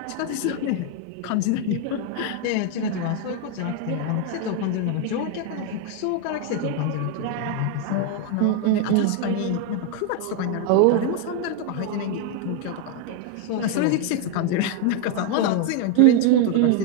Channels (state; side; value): different; both; correlation 0.01